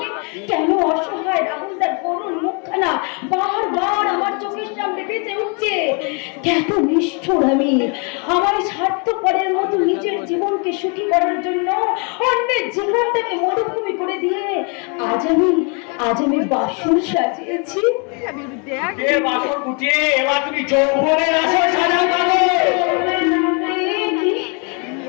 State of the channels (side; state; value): right; quieter; 35.5 dB